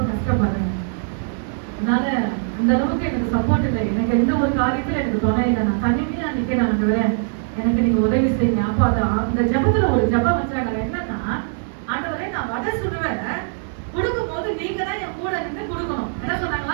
கஷ்டப்படுறேன், அதனால அந்த அளவுக்கு எனக்கு சப்போர்ட் இல்லை, எனக்கு எந்த ஒரு காரியத்துல எனக்கு துணை இல்லை, நான் தனிமையா நிக்கிறேன், ஆண்டவரே எனக்கு நீங்க உதவி செய்யுங்க. அப்போ அந்த ஜபத்துல ஒரு ஜபம் வச்சாங்க. என்னன்னா, ஆண்டவரே நான் வடை சுடுவேன், கொடுக்கும் போது நீங்க தான் என் கூட இருந்து கொடுக்கணும். என்ன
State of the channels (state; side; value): silent; left; digital silence